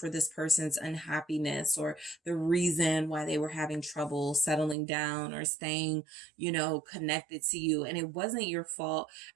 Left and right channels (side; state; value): left; drops out; at 4.8 s